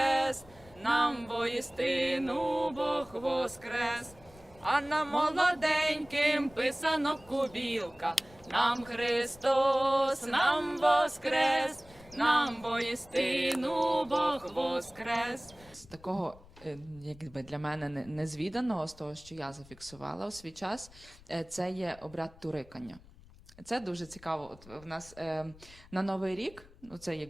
нам воістину Бог воскрес. А нам молоденьким писано кубілка, нам Христос, нам воскрес, нам воістину Бог воскрес. З такого, якби для мене незвіданого, з того, що я зафіксувала у свій час, це є обряд турикання. Це дуже цікаво. От в нас на Новий рік, ну це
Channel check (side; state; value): left; noise; rumble, 23 dB below the sound